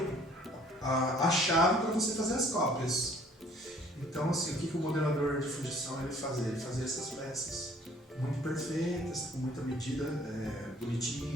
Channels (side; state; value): both; normal; correlation 0.56